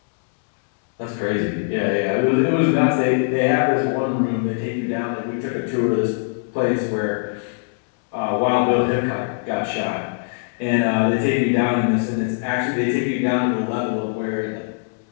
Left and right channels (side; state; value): right; silent; digital silence